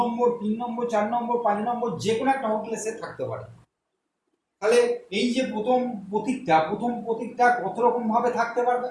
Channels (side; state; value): both; identical; correlation 1.00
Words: 3 নম্বর, 4 নম্বর, 5 নম্বর, যে কোনো একটা হোটেলে সে থাকতে পারে। তাহলে এই যে প্রথম প্রতীকটা কত রকম ভাবে থাকতে পারবে,